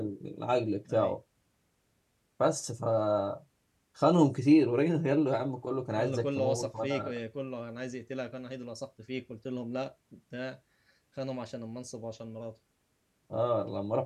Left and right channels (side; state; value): both; identical; correlation 1.00